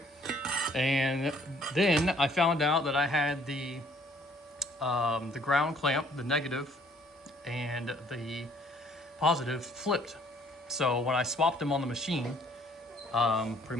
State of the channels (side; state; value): both; normal; correlation 0.61